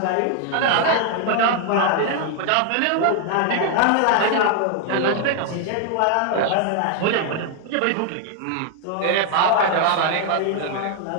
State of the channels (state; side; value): different; both; correlation 0.00